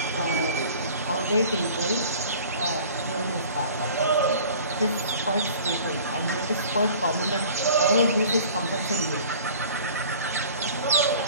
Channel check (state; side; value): inverted; both; correlation -0.46